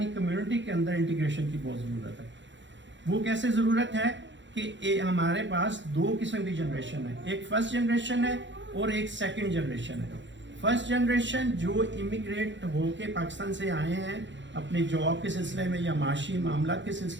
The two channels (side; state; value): left; late; 0.54 ms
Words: کمیونٹی کے اندر انٹیگریشن کی بہت ضرورت ہے. وہ کیسے ضرورت ہے کہ ہمارے پاس دو قسم کی جنریشن ہے, ایک فرسٹ جنریشن ہے اور ایک سیکنڈ جنریشن ہے. فرسٹ جنریشن جو امیگریٹ ہو کے پاکستان سے آئے ہیں اپنے جاب کے سلسلے میں یا معاشی معاملات کے